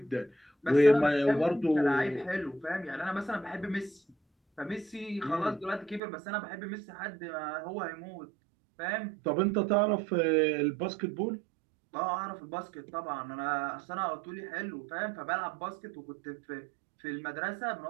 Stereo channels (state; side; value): drops out; left; at 6.0 s